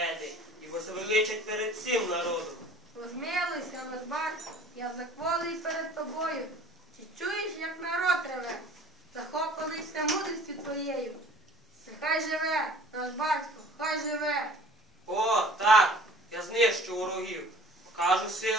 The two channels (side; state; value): both; normal; correlation 0.48